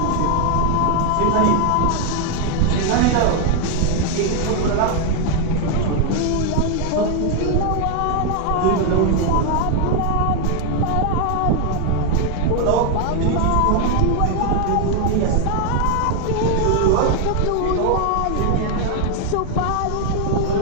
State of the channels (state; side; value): different; both; correlation 0.01